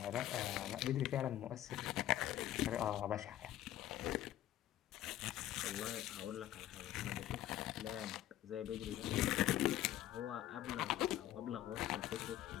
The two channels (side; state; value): right; quieter; 13.0 dB